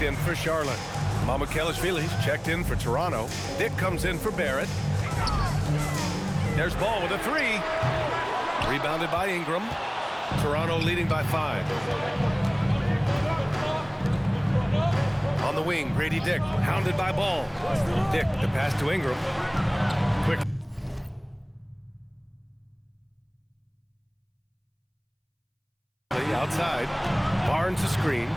in for Charlotte. Mamukelashvili's checked in for Toronto. Dick comes in for Barrett. There's Ball with a 3. Rebounded by Ingram. Toronto leading by 5. On the wing, Grady Dick, hounded by Ball. Dick, the pass to Ingram. Quick. Outside. Barnes a screen.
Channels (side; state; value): both; identical; correlation 1.00